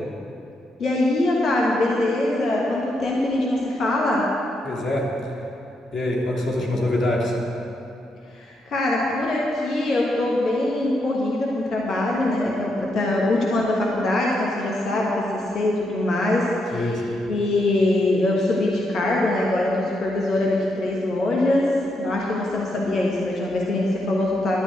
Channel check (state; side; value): normal; both; correlation 0.80